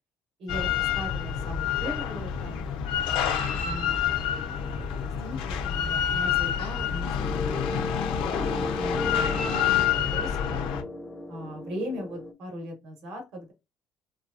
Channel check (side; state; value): right; quieter; 6.8 dB